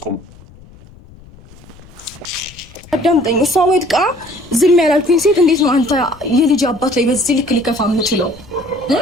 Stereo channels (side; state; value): left; noise; rumble, 23 dB below the sound